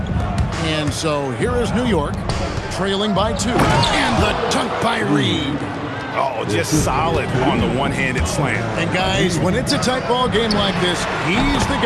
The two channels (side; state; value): both; identical; correlation 1.00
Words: And so here is New York, trailing by 2. And the dunk by Reed. Oh, just solid on the one-handed slam. And guys, when it's a tight ball game like this, he's the